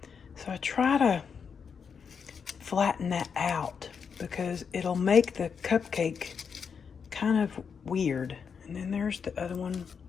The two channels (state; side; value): quieter; right; 6.4 dB